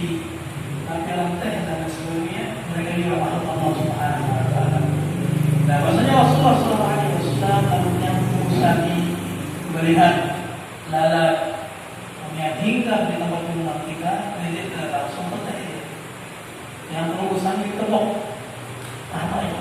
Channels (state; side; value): identical; both; correlation 1.00